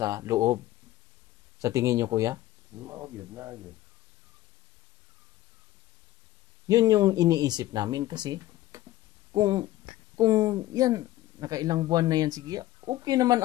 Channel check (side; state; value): right; quieter; 15.5 dB